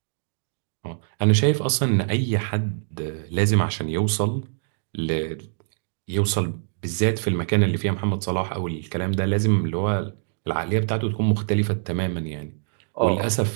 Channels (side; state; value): left; silent; digital silence